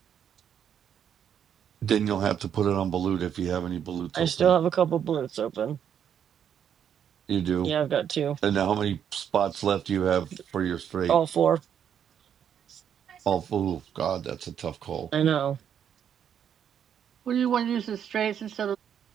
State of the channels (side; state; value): left; quieter; 8.7 dB